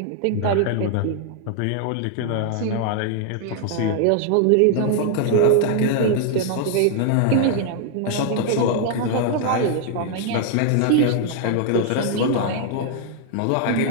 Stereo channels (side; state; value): both; different; correlation 0.00